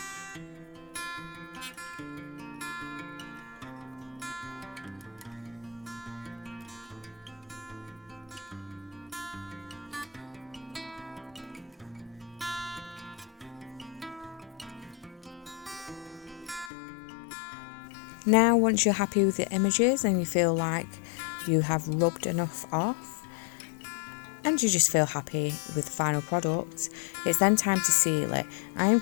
Now, once you're happy with the images and you feel like you have rubbed enough off and you just feel happy with the final product, it's then time to seal it. I am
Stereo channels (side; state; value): right; drops out; at 16.7 s